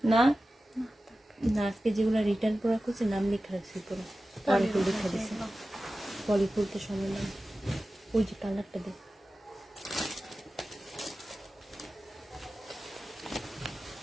না? না, আজকে যেগুলো রিটার্ন করা করছে নাম লেখা রাখছি পুরো, পলিফুল লেখা দিছে। পলিফুলতে সময় নাম, ওই যে কালারটা দেখ।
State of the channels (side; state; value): both; normal; correlation 0.95